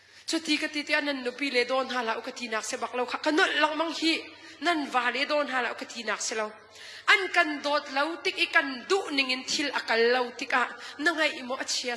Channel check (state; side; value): identical; both; correlation 1.00